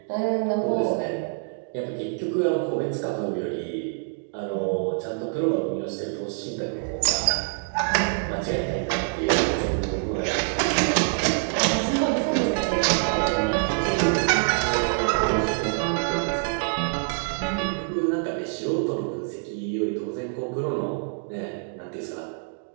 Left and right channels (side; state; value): left; silent; 60 dB below the other